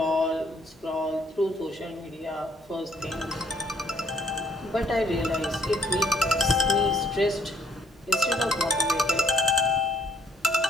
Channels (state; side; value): normal; both; correlation 0.65